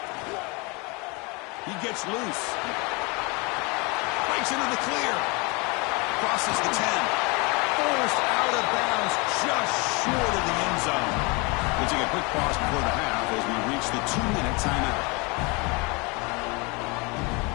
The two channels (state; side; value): quieter; right; 28.6 dB